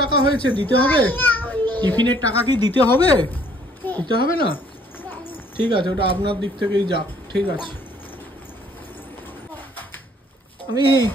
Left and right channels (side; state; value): both; normal; correlation 0.61